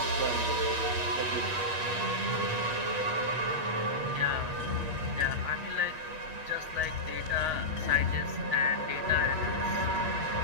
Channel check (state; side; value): late; left; 8.3 ms